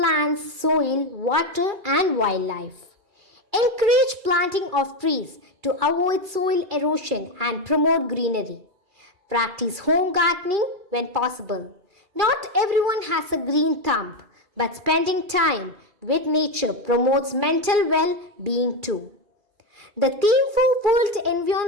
soil, water and wildlife. Encourage planting of trees to avoid soil erosion and promote greenery. Practice home gardening when possible. Not everyone has a green thumb, but spending time with nature promotes mental well-being too. The theme for World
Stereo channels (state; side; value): late; left; 2.4 ms